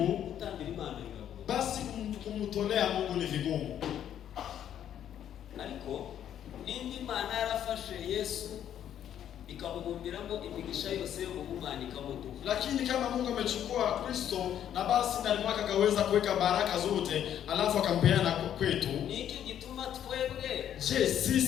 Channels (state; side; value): quieter; right; 10.2 dB